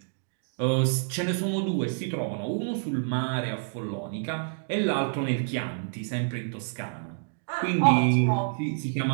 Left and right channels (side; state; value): left; silent; digital silence